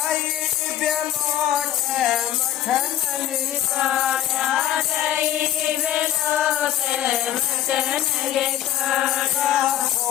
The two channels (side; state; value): right; quieter; 12.0 dB